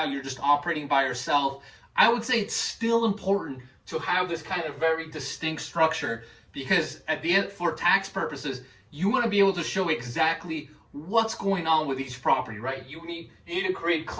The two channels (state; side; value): identical; both; correlation 1.00